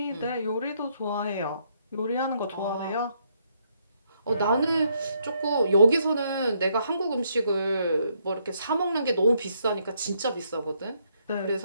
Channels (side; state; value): both; inverted; correlation -0.73